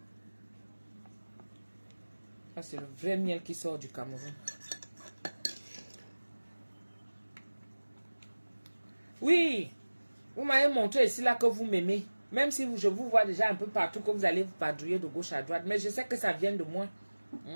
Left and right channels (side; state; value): both; inverted; correlation -1.00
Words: Ça, c'est le vrai miel qui sort du Cameroun. Oui, vous m'avez montré ici là que vous m'aimez. Même si je vous vois déjà un peu partout, que vous allez vous padrouiller de gauche à droite. Mais je sais que ça vient de moi.